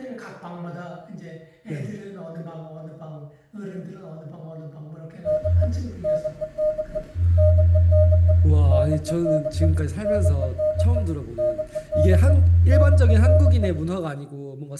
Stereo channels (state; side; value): identical; both; correlation 1.00